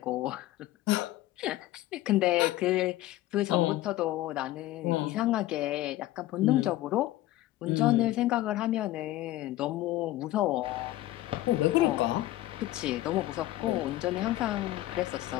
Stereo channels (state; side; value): quieter; right; 15.8 dB